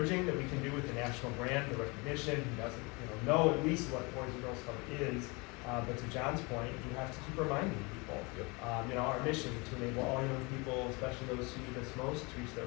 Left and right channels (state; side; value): quieter; right; 27.8 dB